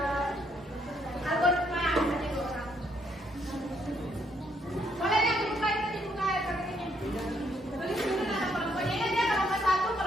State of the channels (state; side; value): normal; both; correlation 0.71